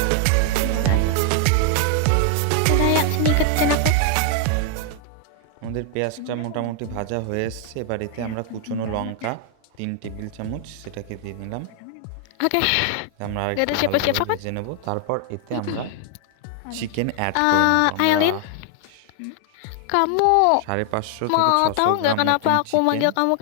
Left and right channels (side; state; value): both; different; correlation 0.00